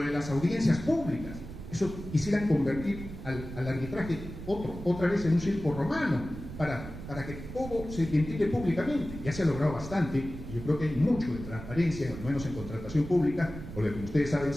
de las audiencias públicas, eso quisieran convertir al arbitraje otra vez en un circo romano, para que todo se ventile públicamente. Ya se ha logrado bastante, y yo creo que hay mucho de transparencia, al menos en contratación pública, porque como ustedes saben,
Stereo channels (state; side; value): noise; right; rumble, 11 dB below the sound